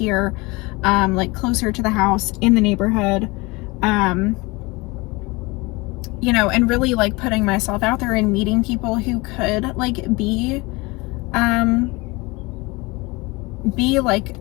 like closer to the house in the neighborhood, you know, and really like putting myself out there and meeting people who could like be like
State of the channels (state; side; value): quieter; right; 24.4 dB